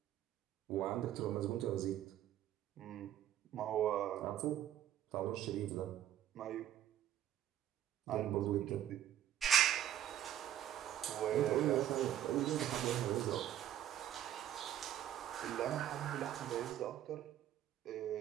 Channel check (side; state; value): left; quieter; 11.4 dB